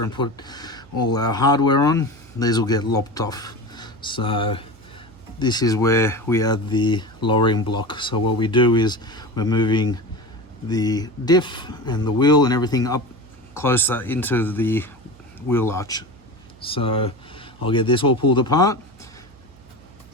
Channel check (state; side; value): noise; right; hum, 24 dB below the sound